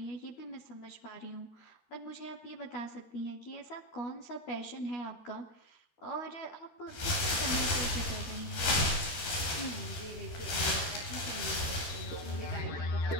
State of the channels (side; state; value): right; late; 13 ms